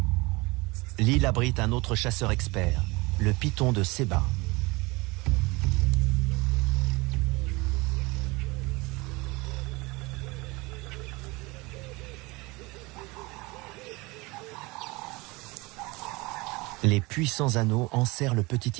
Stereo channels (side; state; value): left; quieter; 24.1 dB